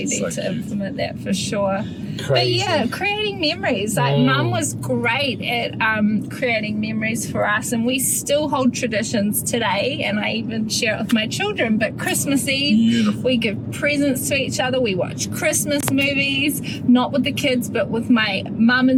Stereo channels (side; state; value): both; identical; correlation 1.00